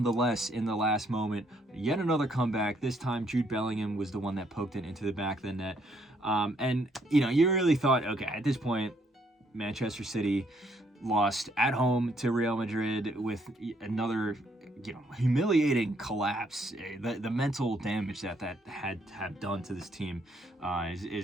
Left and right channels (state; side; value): normal; both; correlation 0.70